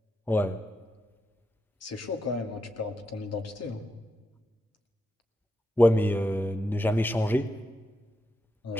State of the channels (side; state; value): both; normal; correlation 0.86